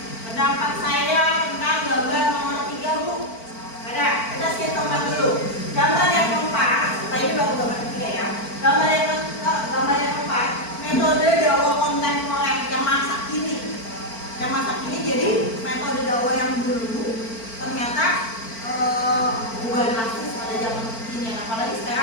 Pendapat saya tentang gambar nomor 3, Bu. Ada, kita skip tempat dulu. Gambar yang keempat, tadi baru gambar ketiga ya. Gambar yang keempat, metode dakwah kontemporer yang masa kini. Yang masa kini jadi metode dakwah yang dulu ternyata ubah drastis pada zaman kini. Apalagi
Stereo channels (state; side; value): late; right; 4.5 ms